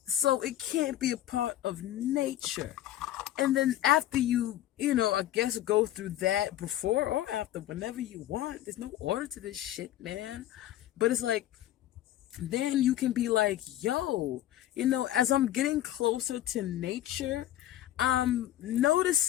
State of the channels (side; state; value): right; quieter; 13.2 dB